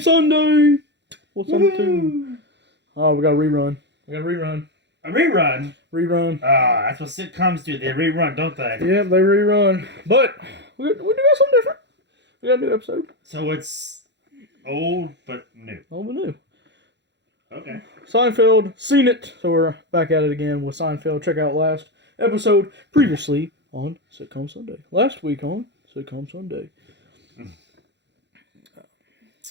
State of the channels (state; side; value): late; left; 0.51 ms